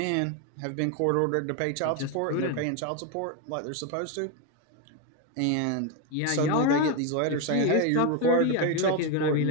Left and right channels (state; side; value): different; both; correlation 0.02